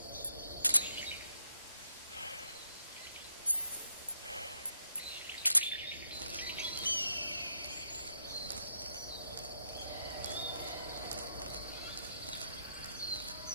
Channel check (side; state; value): both; inverted; correlation -0.77